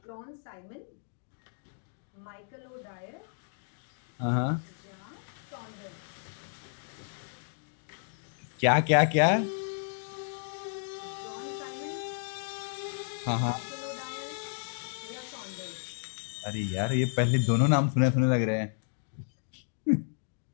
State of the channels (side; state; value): right; silent; digital silence